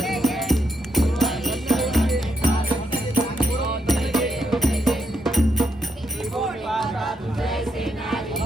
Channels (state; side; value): normal; both; correlation 0.78